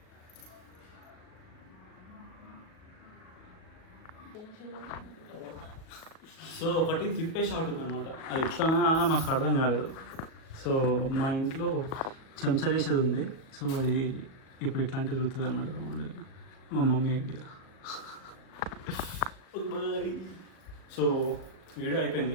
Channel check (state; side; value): late; right; 37 ms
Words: సో ఒకటి తిప్పే షాట్ ఉందన్నమాట. అది ఎట్లానా మాకు అర్థం కాలేదు. సో మా ఇంట్లో చెంచా చేసేది ఉంది. సో అది ఇప్పుడు ఇట్లాంటివి తిరుగుతుంది అనమాట. మా mummy idea. Bye. So video